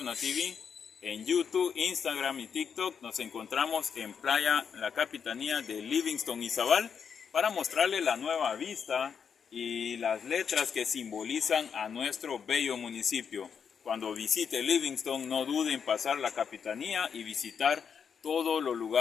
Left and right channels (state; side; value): quieter; right; 6.9 dB